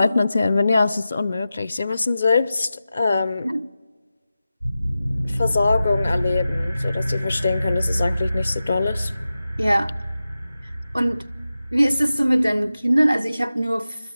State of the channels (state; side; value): inverted; both; correlation -0.93